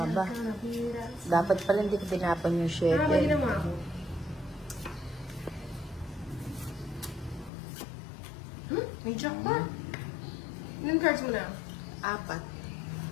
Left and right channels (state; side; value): drops out; right; at 7.5 s